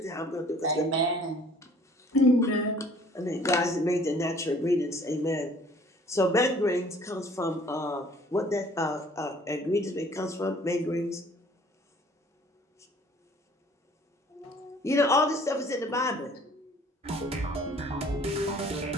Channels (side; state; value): both; normal; correlation 0.54